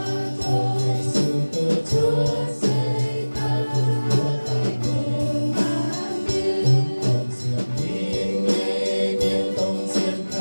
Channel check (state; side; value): inverted; both; correlation -1.00